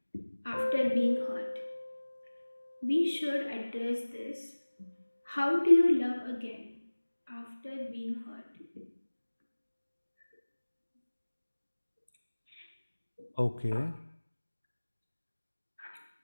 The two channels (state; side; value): inverted; both; correlation -1.00